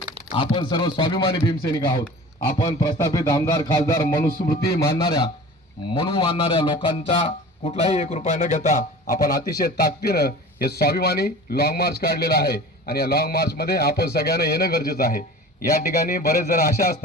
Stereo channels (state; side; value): normal; both; correlation 0.39